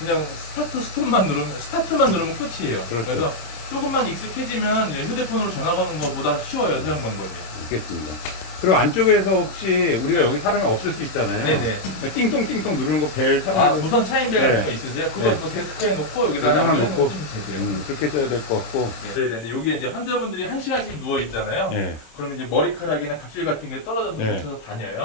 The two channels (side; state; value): right; late; 26 ms